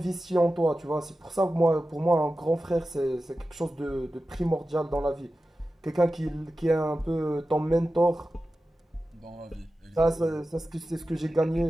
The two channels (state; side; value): normal; both; correlation 0.94